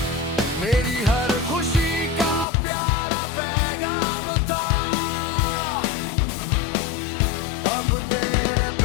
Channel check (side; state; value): right; drops out; at 2.5 s